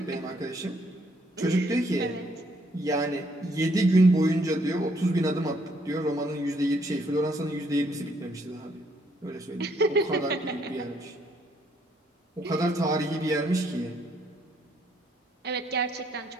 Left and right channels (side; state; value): both; normal; correlation 0.69